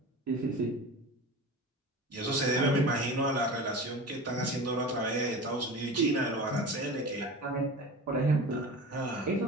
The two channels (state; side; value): normal; both; correlation 0.32